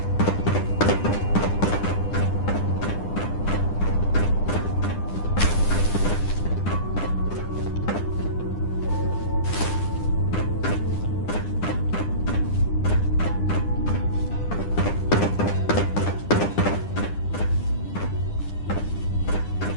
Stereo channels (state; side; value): late; right; 9.9 ms